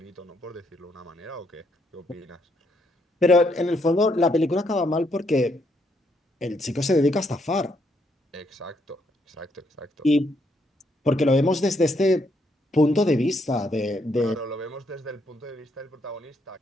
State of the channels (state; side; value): normal; both; correlation 0.74